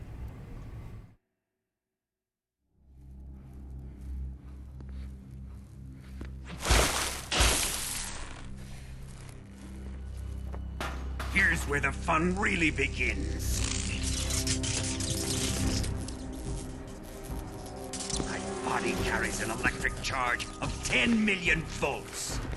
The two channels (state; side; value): identical; both; correlation 1.00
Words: Here's where the fun really begins. My body carries an electric charge of 10 million volts.